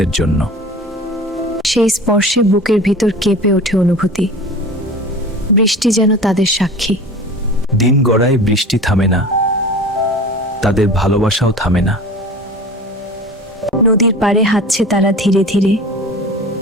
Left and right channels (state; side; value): normal; both; correlation 0.38